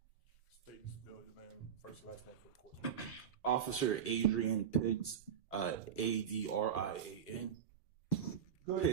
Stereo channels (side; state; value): left; quieter; 8.5 dB